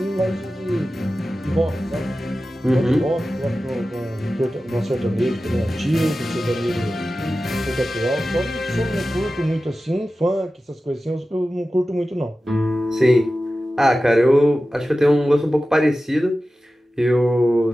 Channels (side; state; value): both; normal; correlation 0.94